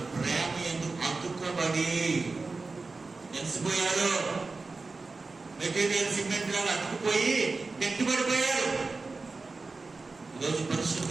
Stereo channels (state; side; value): quieter; left; 3.8 dB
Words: ప్రేమ ఎందుకు అతుక్కబడి తెలిసిపోయారు. మెటీరియల్ సిమెంట్ లాగా అతుక్కుపోయి గట్టిపడిపోయారు. ఈరోజు